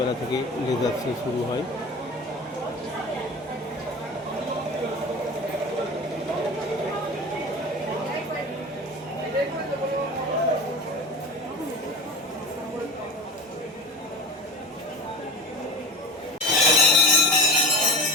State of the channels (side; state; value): both; normal; correlation 0.32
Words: থেকে লেজার শো শুরু হয়।